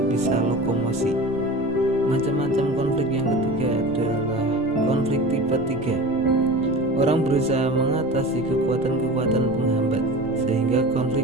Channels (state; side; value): noise; right; rumble, 25 dB below the sound